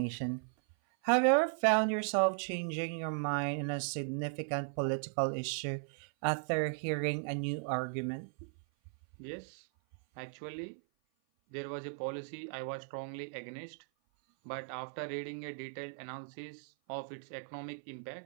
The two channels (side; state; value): left; silent; 53 dB below the other